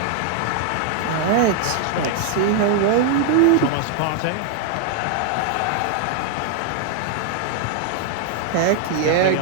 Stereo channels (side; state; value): both; different; correlation 0.00